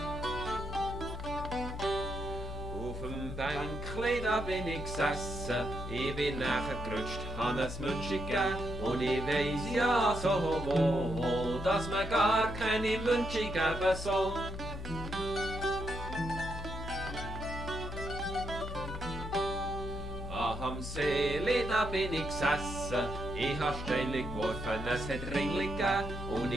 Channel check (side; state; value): left; noise; hum, 7 dB below the sound